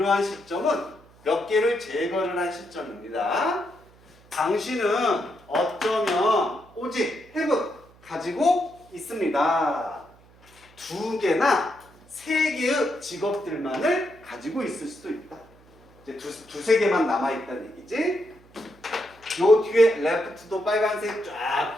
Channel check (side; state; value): right; noise; hum, 27 dB below the sound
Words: 몇 개를 제거를 한 시점입니다. 당신은 어쩌면 오직 have 가지고 있습니다. 2개나 3개의 직업들만을 가지고 있을 수도 있다. 이제 두세 개만 남아있다는 얘기지. 요 뒤에 left도 빨간색 쫙